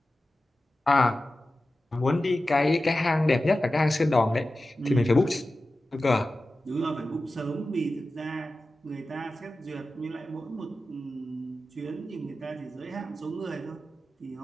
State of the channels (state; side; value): normal; both; correlation 0.94